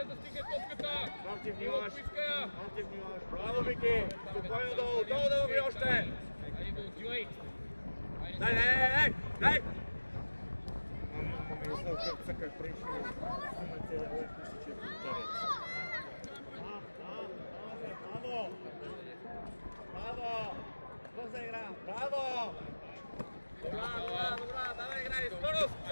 да стигне топката! Марти внимаваш! Отпуска я! Марти внимаваш! Браво, Вики! Спокойно долу, долу да лови още! Айде да отивай! Дай! Как пришли, имате лъчнище в интерес. Браво! Браво! Бърза игра! Браво! Добра! Давай играй! Скорост!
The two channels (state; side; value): inverted; both; correlation -1.00